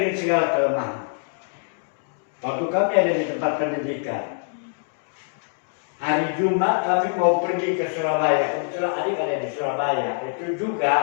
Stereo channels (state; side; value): silent; right; digital silence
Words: segala kelemahan. Waktu kami ada di tempat pendidikan, hari Jumat kami mau pergi ke Surabaya. Kebetulan adik ada di Surabaya. Itu